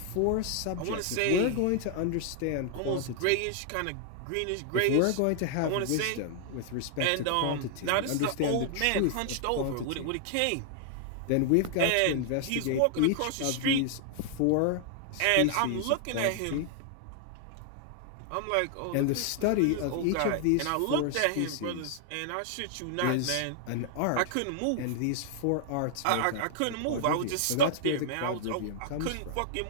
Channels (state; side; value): different; both; correlation 0.00